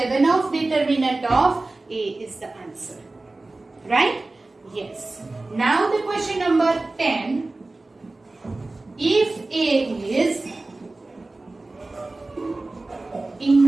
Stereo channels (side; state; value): left; quieter; 3.1 dB